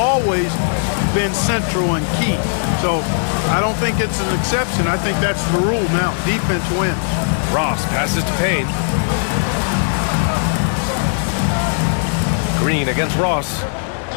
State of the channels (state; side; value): silent; right; digital silence